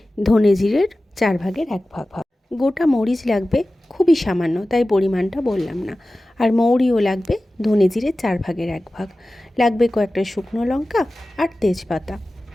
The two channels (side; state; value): both; normal; correlation 0.96